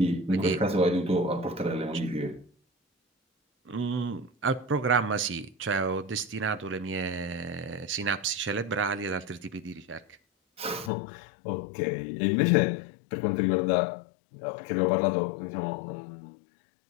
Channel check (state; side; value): drops out; right; at 10.9 s